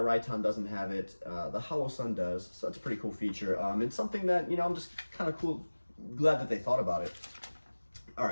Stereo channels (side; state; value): both; inverted; correlation -1.00